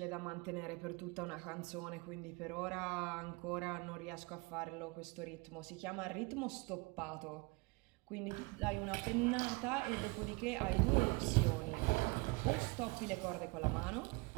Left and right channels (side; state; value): left; quieter; 26.7 dB